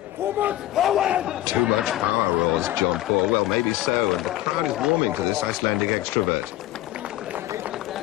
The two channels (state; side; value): quieter; right; 15.0 dB